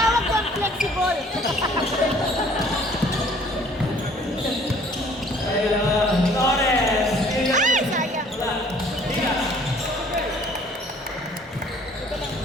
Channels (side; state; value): both; normal; correlation 0.55